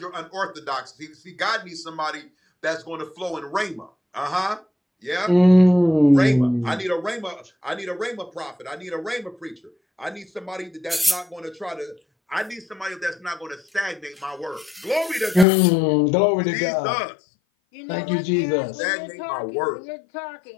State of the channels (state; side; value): drops out; right; at 15.5 s